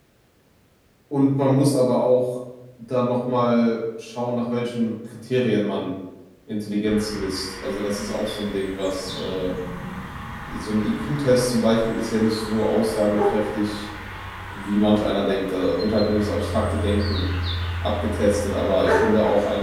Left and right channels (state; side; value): identical; both; correlation 1.00